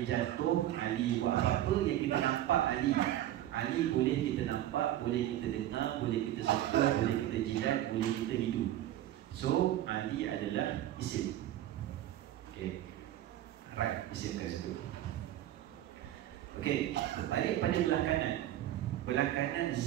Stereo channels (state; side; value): quieter; left; 13.2 dB